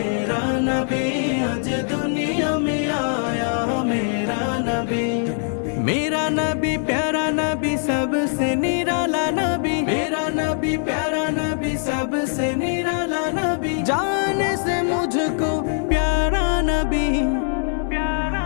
नबी, आज दुनिया में आया मेरा नबी। मेरा नबी प्यारा नबी सबसे निराला नबी, मेरा नबी प्यारा नबी सबसे निराला नबी। जाने से मुझको प्यारा नबी, प्यारा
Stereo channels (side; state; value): right; silent; 64 dB below the other